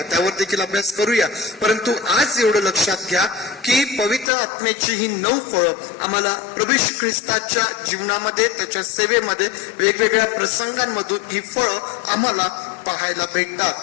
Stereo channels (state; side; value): drops out; right; at 4.2 s